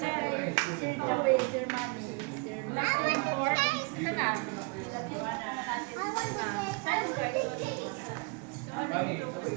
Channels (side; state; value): left; quieter; 32.0 dB